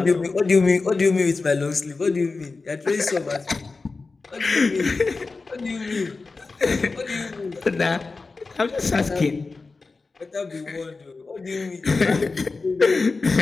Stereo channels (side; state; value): right; quieter; 3.9 dB